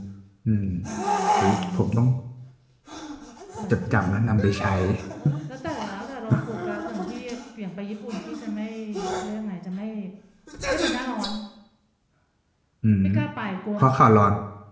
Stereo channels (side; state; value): both; identical; correlation 1.00